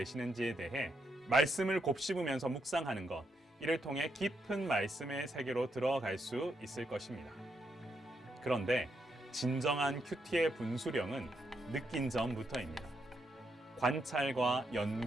대해 말씀을 곱씹으면서 묵상하는 것, 이를 통해 깊은 말씀의 세계로 들어갈 수 있을 것입니다. 그런데 진정한 큐티의 분수령은 느낀 점부터입니다. 관찰과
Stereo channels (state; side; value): normal; both; correlation 0.80